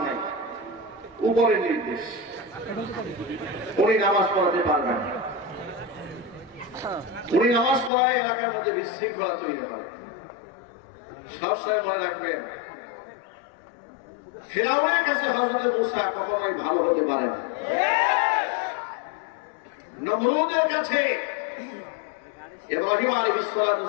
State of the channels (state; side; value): drops out; right; at 7.9 s